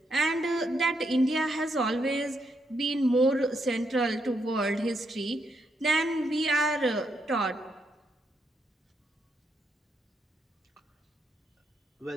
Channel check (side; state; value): both; normal; correlation 0.78